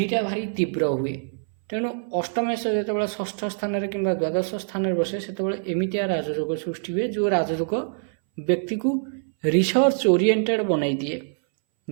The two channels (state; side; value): silent; left; 61 dB below the other